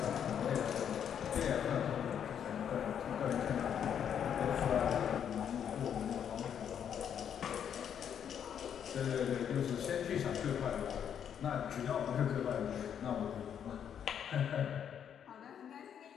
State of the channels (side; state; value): right; quieter; 8.6 dB